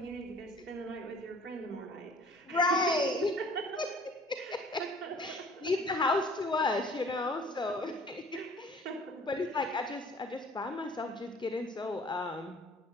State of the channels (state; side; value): normal; both; correlation 0.51